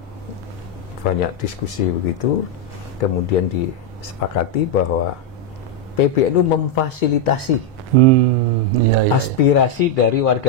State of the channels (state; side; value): normal; both; correlation 0.01